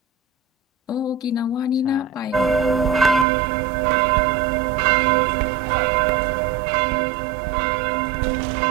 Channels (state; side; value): drops out; left; at 3.2 s